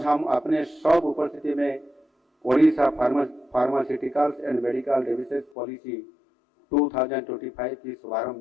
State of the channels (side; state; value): right; drops out; at 5.5 s